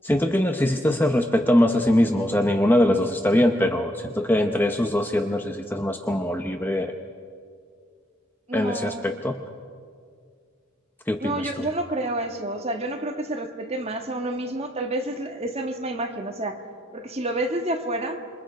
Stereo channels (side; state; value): both; normal; correlation 0.76